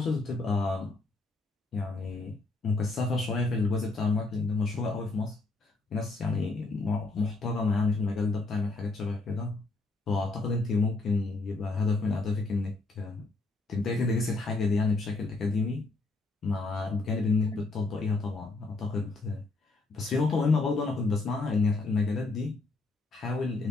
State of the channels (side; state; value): right; quieter; 3.3 dB